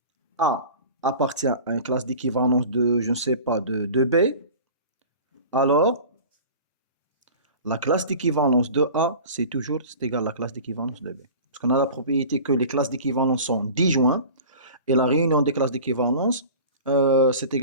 A appartient à une classe d'équivalence de, je ne sais pas, de B, alors la classe d'équivalence de A, c'est égal à la classe d'équivalence de B. Parce qu'on a la propriété que les classes d'équivalence sont disjointes, et la réunion des classes d'équivalence, c'est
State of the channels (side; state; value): both; inverted; correlation -0.39